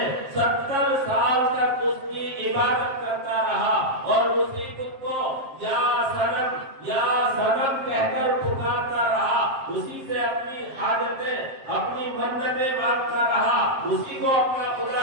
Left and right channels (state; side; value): late; left; 7.6 ms